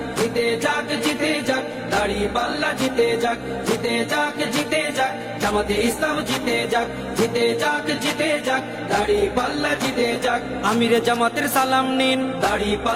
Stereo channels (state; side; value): identical; both; correlation 1.00